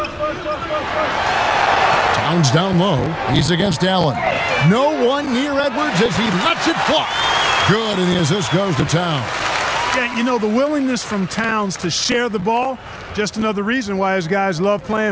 Towns down low. He's against Allen. No one near Edwards as he lets it fly. Good, and the assist goes to Towns. Yeah, you know, the willingness from Towns to share the ball, just another reason why his guys love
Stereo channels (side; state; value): both; identical; correlation 1.00